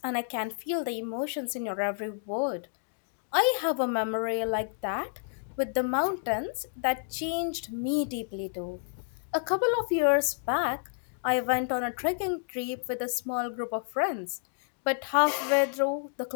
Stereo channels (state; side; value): silent; right; digital silence